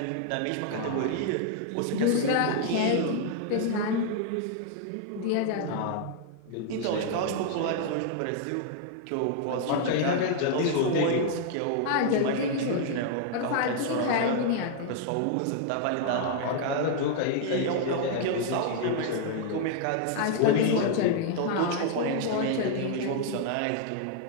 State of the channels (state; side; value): different; both; correlation -0.01